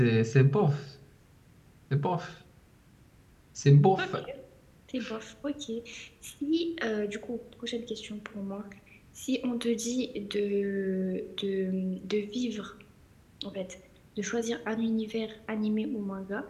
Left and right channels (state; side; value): identical; both; correlation 1.00